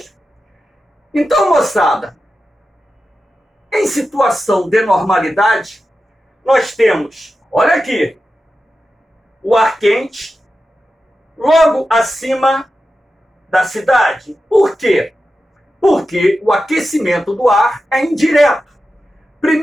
Então, moçada, em situação de normalidade, nós temos, olha aqui, o ar quente logo acima da cidade. Por quê? Porque o aquecimento do ar é indireto.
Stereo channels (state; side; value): normal; both; correlation 0.92